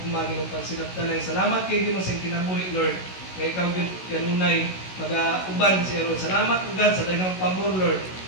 ginong pansinaptanay. Salamat kay Ginoo sa kinabuhi Lord. Kaya ikaw kanunay mag-uban siya Lord. Salamat o God sa daghang pabor Lord.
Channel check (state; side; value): late; right; 16 ms